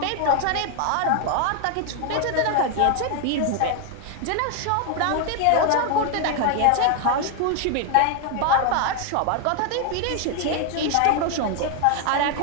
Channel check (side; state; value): both; different; correlation 0.00